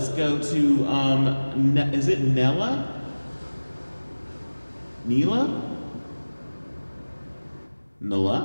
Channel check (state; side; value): inverted; both; correlation -1.00